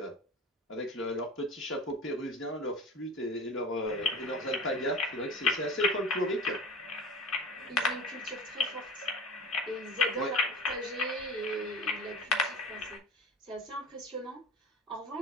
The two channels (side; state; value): both; normal; correlation 0.35